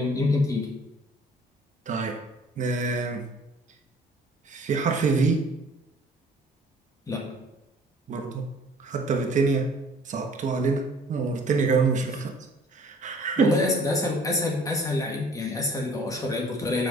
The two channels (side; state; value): both; normal; correlation 0.53